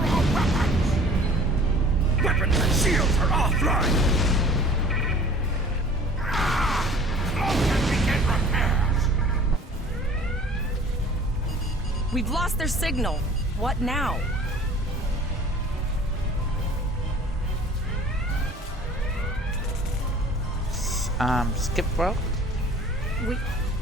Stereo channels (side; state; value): both; normal; correlation 0.47